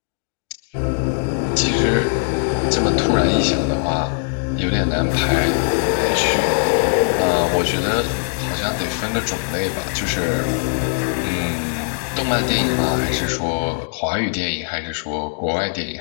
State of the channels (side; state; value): right; silent; digital silence